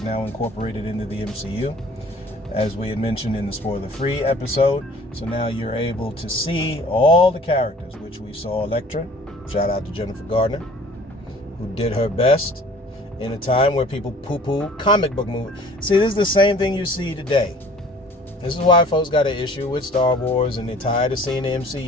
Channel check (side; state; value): both; normal; correlation 0.50